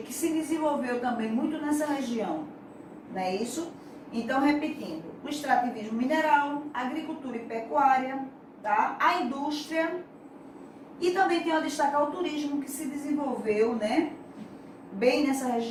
se desenvolveu também muito nessa região, não é isso? Então, repetindo, o extrativismo mineral, agricultura e pecuária, tá? A indústria e também tenho a destacar o turismo que se desenvolveu, né? Bem nessa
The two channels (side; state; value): both; identical; correlation 1.00